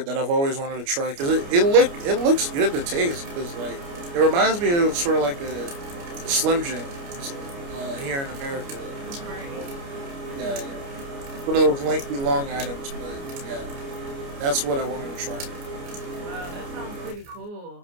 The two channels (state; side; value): late; left; 29 ms